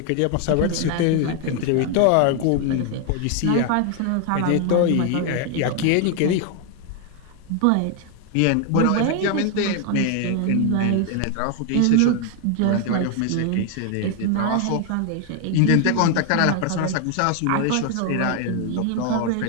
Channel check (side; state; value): both; different; correlation 0.01